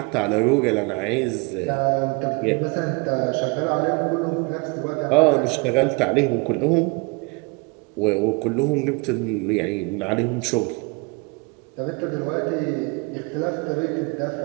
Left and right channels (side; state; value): left; quieter; 28.9 dB